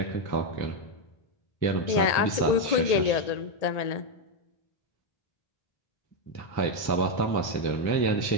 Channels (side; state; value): right; late; 1.8 ms